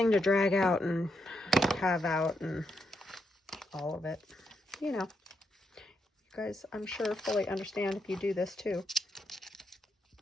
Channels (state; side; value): normal; both; correlation 0.81